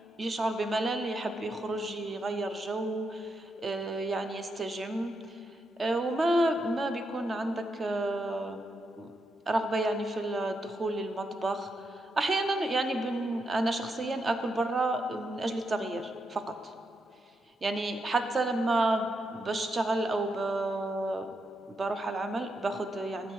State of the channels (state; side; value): normal; both; correlation 0.82